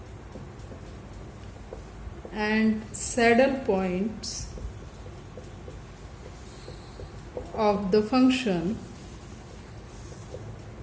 and saddle points of the function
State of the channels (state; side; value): identical; both; correlation 1.00